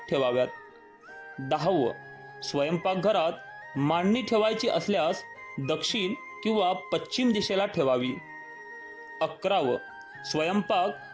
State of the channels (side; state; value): both; identical; correlation 1.00